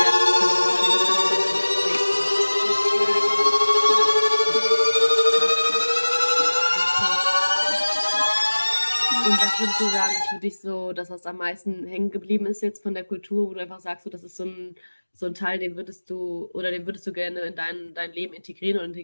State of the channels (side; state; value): both; inverted; correlation -1.00